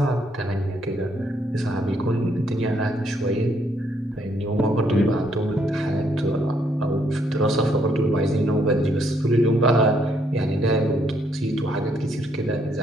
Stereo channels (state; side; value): normal; both; correlation 0.71